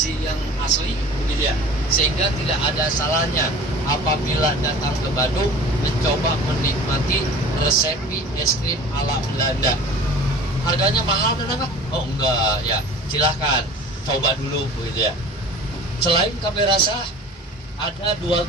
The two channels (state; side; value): normal; both; correlation 0.42